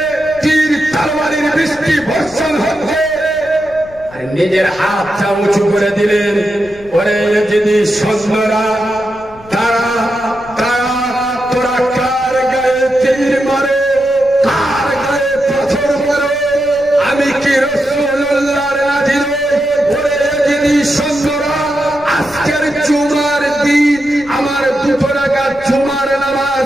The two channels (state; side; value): noise; left; rumble, 22 dB below the sound